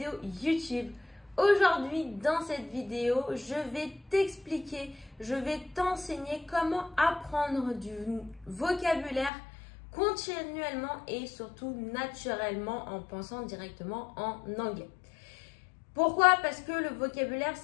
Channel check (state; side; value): drops out; right; at 9.3 s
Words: YouTube. Aujourd'hui, dans cette vidéo, je vais t'expliquer, je vais t'enseigner comment apprendre du vocabulaire continuellement et surtout naturellement en pensant directement en anglais. Pourquoi? Parce que le vocabulaire,